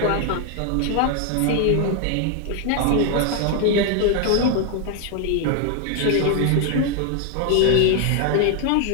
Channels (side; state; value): both; different; correlation 0.00